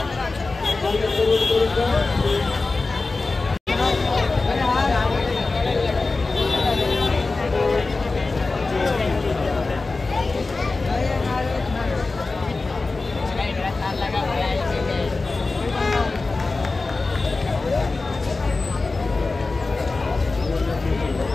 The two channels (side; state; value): right; quieter; 3.6 dB